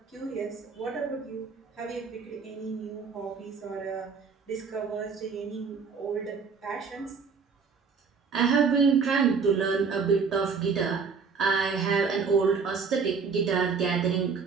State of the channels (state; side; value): quieter; left; 5.4 dB